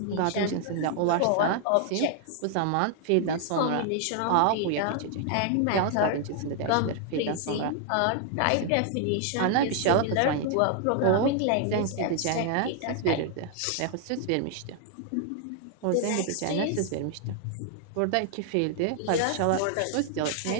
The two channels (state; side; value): different; both; correlation 0.00